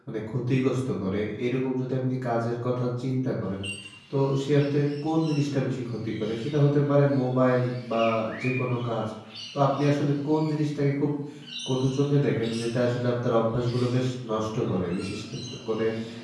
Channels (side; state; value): both; identical; correlation 1.00